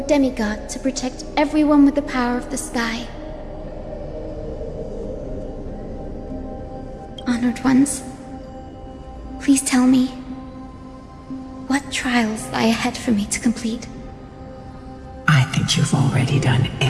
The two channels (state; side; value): identical; both; correlation 1.00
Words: demigod to protect everyone with the power of the sky. Honored ones, please tell me, what trials lie ahead for me to complete? I think you've already done